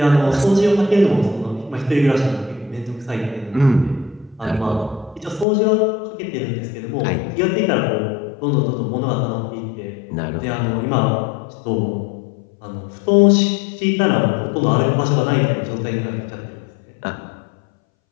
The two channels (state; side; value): drops out; right; at 5.5 s